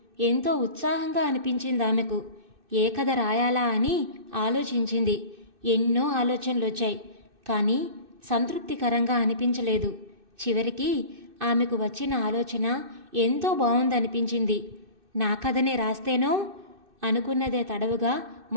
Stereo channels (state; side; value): late; left; 2.6 ms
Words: ఎంతో ఉత్సాహంగా అనిపించింది ఆమెకు. ఏ కథ రాయాలా అని ఆలోచించింది. ఎన్నో ఆలోచనలొచ్చాయి. కానీ సంతృప్తికరంగా అనిపించలేదు. చివరికి ఆమెకు వచ్చిన ఆలోచన ఎంతో బావుందనిపించింది. నా కథనే రాస్తేనో అనుకున్నదే తడవుగా